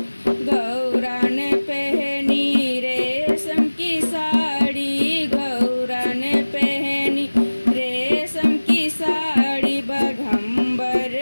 गौरा ने पहनी रेशम की साड़ी, गौरा ने पहनी रेशम की साड़ी। बघम्बर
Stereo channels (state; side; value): inverted; both; correlation -1.00